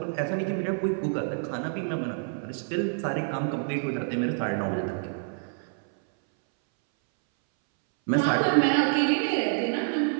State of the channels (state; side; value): silent; left; 60 dB below the other